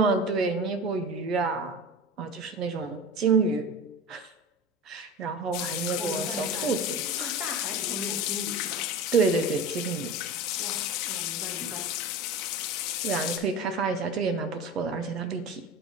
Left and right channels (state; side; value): normal; both; correlation 0.31